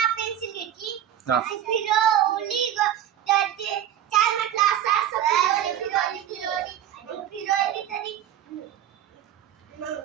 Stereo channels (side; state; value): left; quieter; 10.9 dB